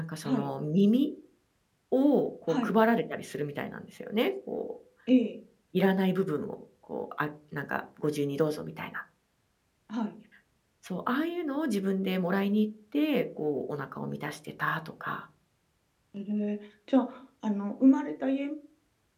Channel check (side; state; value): both; identical; correlation 1.00